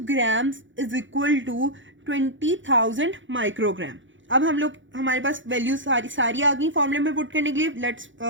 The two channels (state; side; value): late; left; 0.56 ms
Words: grams is equal to 20,000 microgram. अब हम लोग हमारे पास वैल्यू सारी आ गई फॉर्मूले में पुट करने के लिए. Let's